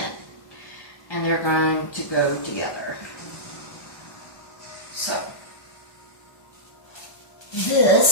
And they're going to go together. So,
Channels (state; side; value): late; right; 1.2 ms